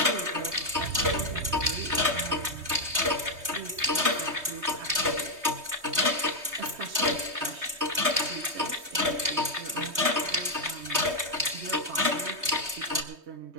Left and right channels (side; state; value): left; late; 3.2 ms